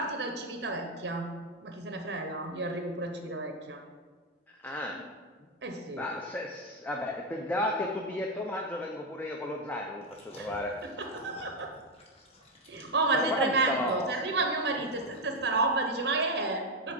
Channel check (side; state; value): both; normal; correlation 0.06